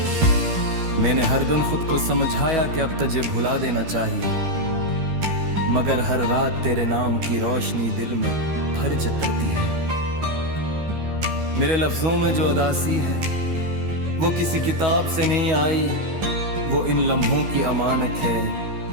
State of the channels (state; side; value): late; left; 12 ms